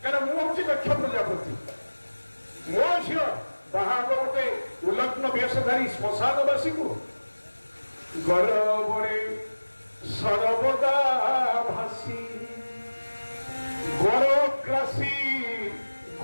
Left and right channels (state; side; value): inverted; both; correlation -1.00